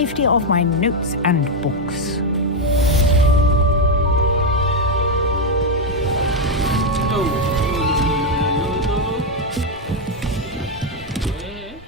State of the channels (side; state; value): both; normal; correlation 0.03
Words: of my notes and books.